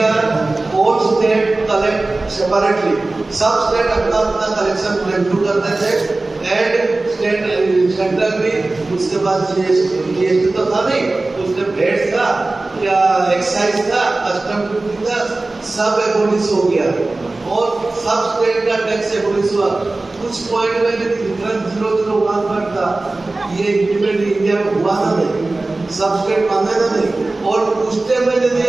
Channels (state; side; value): quieter; left; 3.1 dB